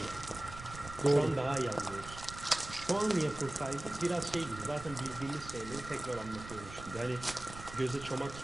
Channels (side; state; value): right; noise; rumble, 13 dB below the sound